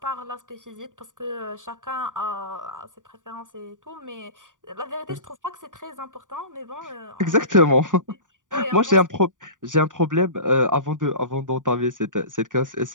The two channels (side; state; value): left; late; 0.88 ms